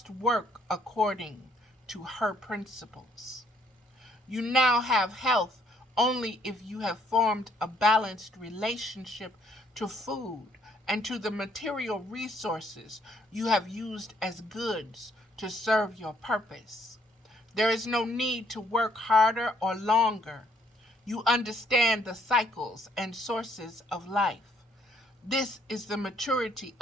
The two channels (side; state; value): both; normal; correlation 0.67